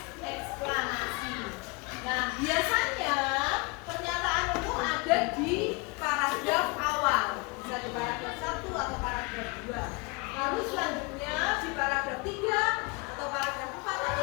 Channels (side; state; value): right; quieter; 28.0 dB